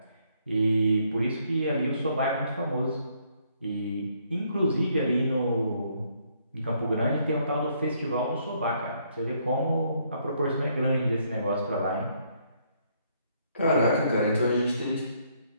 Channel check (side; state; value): both; inverted; correlation -0.69